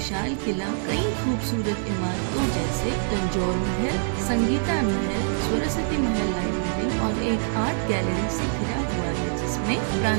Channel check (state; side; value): silent; left; digital silence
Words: किला कई खूबसूरत इमारतों जैसे तंजौर महल, संगीता महल, सरस्वती महल लाइब्रेरी और एक आर्ट गैलरी से घिरा हुआ है, जिसमें